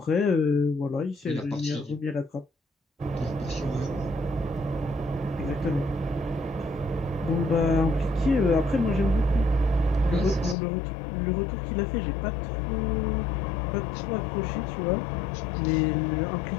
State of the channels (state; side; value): drops out; right; at 10.6 s